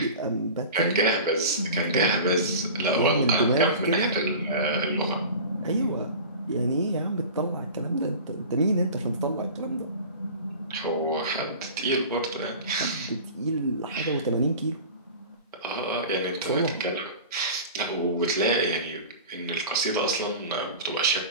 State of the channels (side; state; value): both; inverted; correlation -0.36